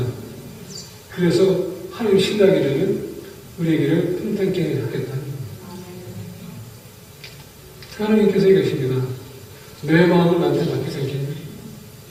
그래서 하나님 신뢰하게 되면 우리에게를 평탄케 하겠다. 하나님께서 얘기하십니다. 너의 마음을 나한테 맡기지 않겠냐?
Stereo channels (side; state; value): both; identical; correlation 1.00